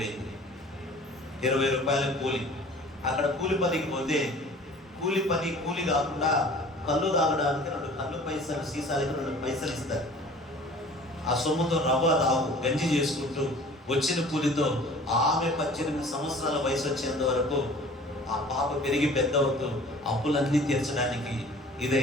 20 రూపాయల కూలి. అక్కడ కూలి పనికి పోతే కూలి కాకుండా కళ్ళు తాగడానికి 2 కళ్ళు పైసలు, సీసాలకి 2 పైసలు ఇస్తారు. ఆ సొమ్ముతో రవ్వ రావు గంజి చేసుకుంటూ వచ్చిన కూలితో ఆమె 18 సంవత్సరాల వయసు వచ్చేంత వరకు ఆ పాప పెరిగి పెద్ద అవుతూ అప్పులన్నీ తీర్చడానికి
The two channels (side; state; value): both; normal; correlation 0.47